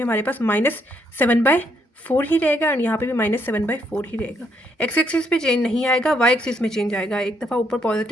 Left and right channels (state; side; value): normal; both; correlation 0.73